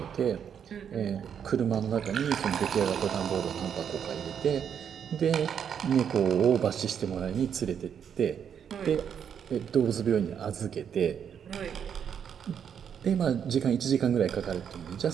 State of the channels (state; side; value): quieter; left; 8.0 dB